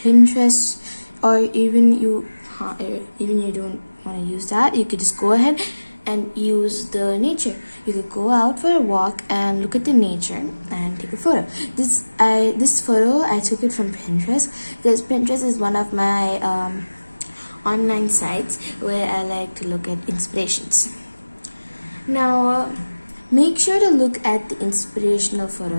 Pinterest, or even you don't want to use that, you could just go ahead and use the nature. You could go out for a walk and look at the nature and take a photo. This photo I took it from Pinterest because Pinterest is one of my online sites where I like to look at inspirations. Now make sure to look at the inspirational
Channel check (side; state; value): both; inverted; correlation -1.00